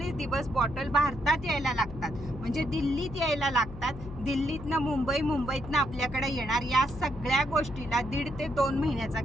दिवस बॉटल भारतात यायला लागतात, म्हणजे दिल्लीत यायला लागतात. दिल्लीतनं मुंबई, मुंबईतनं आपल्याकडे येणार, या सगळ्या गोष्टीला 1.5 ते 2 महिन्याचा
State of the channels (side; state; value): left; noise; hum, 12 dB below the sound